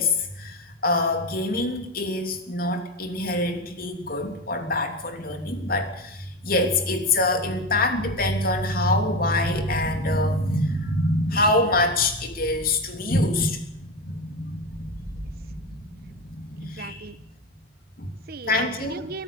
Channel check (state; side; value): normal; both; correlation 0.18